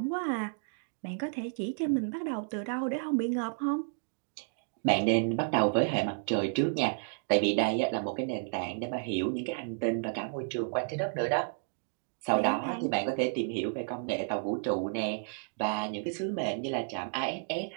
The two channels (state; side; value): silent; left; digital silence